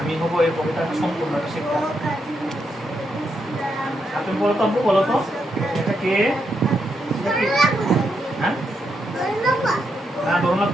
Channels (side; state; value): both; normal; correlation 0.82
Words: হবো এই কবিতাটা সম্পূর্ণ একটা শিক্ষা। তুমি বলো তো, আব্বু বলো তো, এটা কে? হ্যাঁ, না ধরুন না,